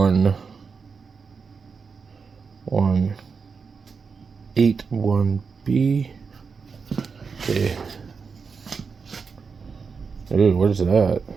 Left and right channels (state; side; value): quieter; left; 5.3 dB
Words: Okay. Ooh, what is that?